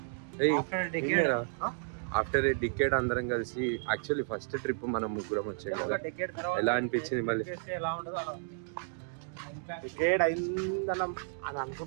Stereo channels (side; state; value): left; silent; digital silence